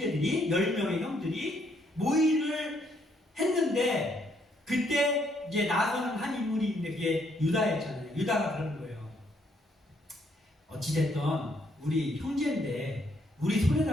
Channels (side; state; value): both; normal; correlation 0.71